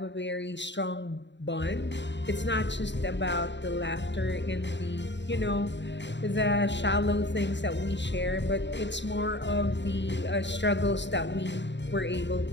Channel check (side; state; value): right; late; 0.52 ms